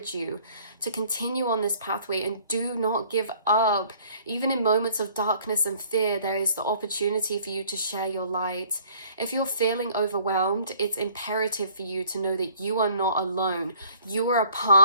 you to continue on this pathway and do not give up. Even in moments of darkness and fear, there is the opportunity for you to share your light. If you're feeling overwhelmed, it's imperative for you to know that you are not alone. You are a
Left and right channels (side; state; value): both; inverted; correlation -0.56